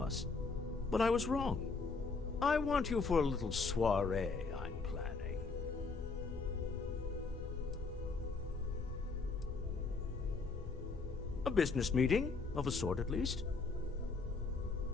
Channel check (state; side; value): quieter; right; 4.3 dB